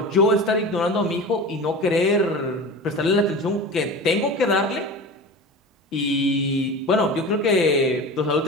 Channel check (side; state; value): both; normal; correlation 0.32